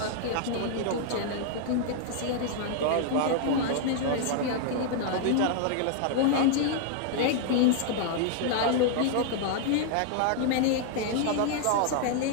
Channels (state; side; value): different; both; correlation -0.01